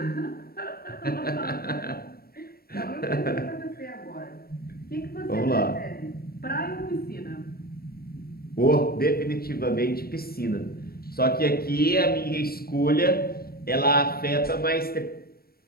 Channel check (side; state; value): right; late; 0.44 ms